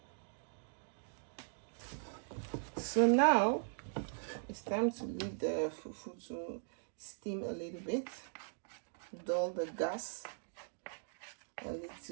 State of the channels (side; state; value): left; silent; digital silence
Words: so now it's time to leave the fufu to steam a little bit, dull the gas a